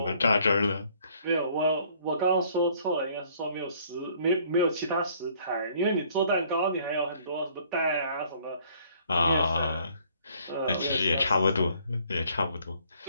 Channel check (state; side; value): inverted; both; correlation -0.60